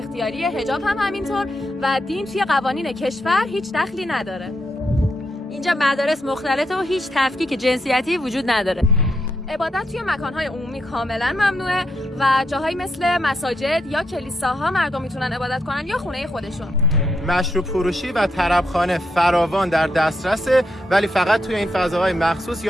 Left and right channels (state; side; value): normal; both; correlation 0.80